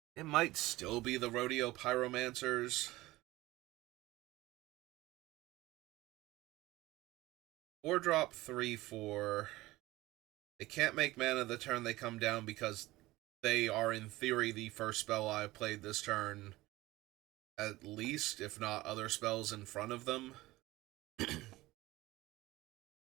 It might still be the Rodeo Pyromancers. 4-drop 3, 4. They can't make mana the turn they come down because they are, in theory, the first spell I've played this turn. At least, if not other spells in front of them.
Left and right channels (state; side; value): quieter; left; 18.6 dB